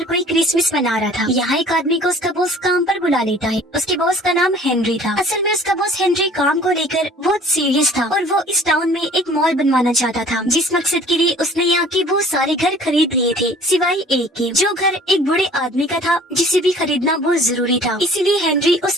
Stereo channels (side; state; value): both; normal; correlation 0.50